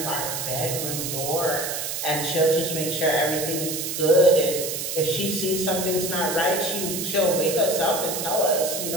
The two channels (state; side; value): noise; right; hiss, 4 dB below the sound